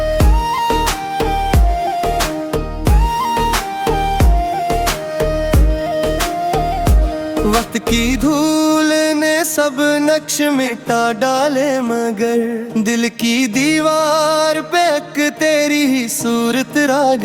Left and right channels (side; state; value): both; identical; correlation 1.00